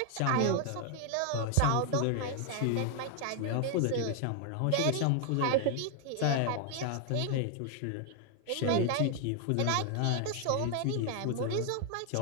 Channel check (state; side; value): different; both; correlation 0.00